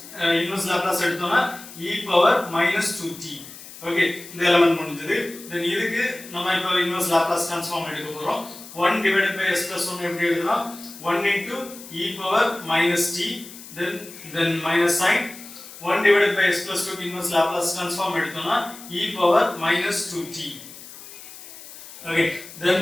Laplace எடுத்தோம்னா e power minus 2t. Okay, இந்த element முடிஞ்சது. Then இதுக்கு நம்ம இப்போ இன்வெர்ஸ் லாப்லாஸ் ட்ரான்ஸ்ஃபார்ம் எடுக்க போறோம். 1 divided by s plus 1 எப்படி எழுதலாம்? 1 into e power minus t, then minus sign. 1 divided by s plus 2 க்கு இன்வெர்ஸ் லாப்லாஸ் ட்ரான்ஸ்ஃபார்ம் எடுத்தோம்னா e power minus 2t. Okay, then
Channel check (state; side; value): noise; left; hiss, 16 dB below the sound